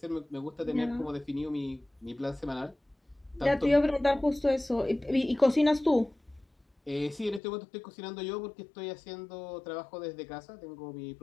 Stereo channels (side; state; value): right; drops out; at 7.4 s